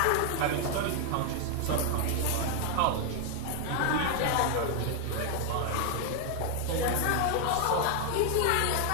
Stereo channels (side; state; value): both; different; correlation 0.00